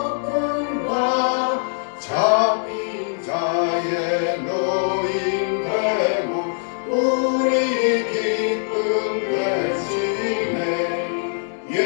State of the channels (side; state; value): right; silent; digital silence